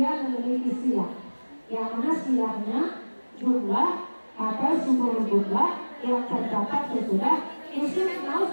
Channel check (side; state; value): both; inverted; correlation -1.00